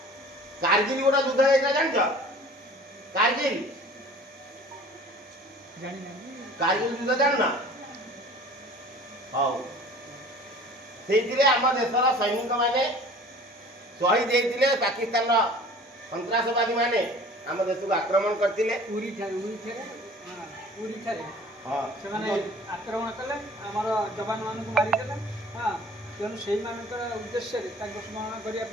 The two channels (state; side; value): normal; both; correlation 0.46